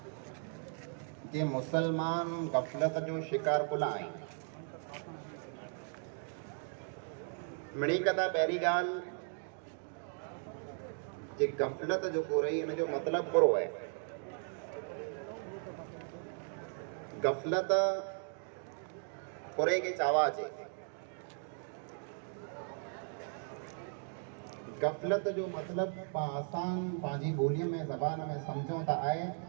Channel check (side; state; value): left; silent; 53 dB below the other